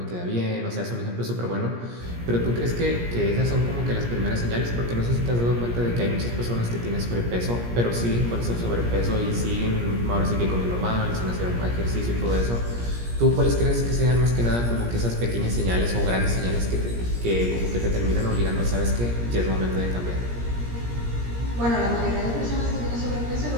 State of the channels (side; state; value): left; late; 17 ms